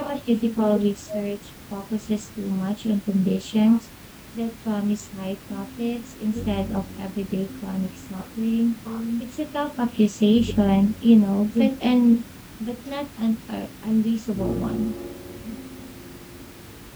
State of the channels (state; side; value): identical; both; correlation 1.00